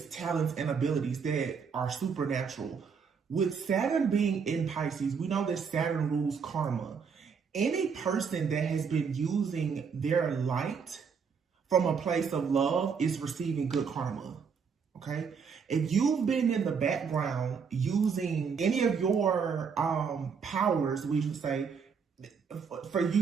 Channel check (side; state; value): left; quieter; 6.1 dB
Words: talents, and abilities that are supernatural. With Saturn being in Pisces, we know that Saturn rules karma. Any person that has been using their light from a place of love is receiving good karma, okay? If you've been in the background using any of your powers, we should say, for